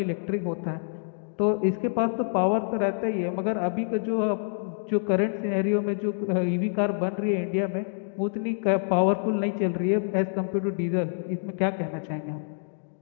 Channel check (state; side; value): silent; right; digital silence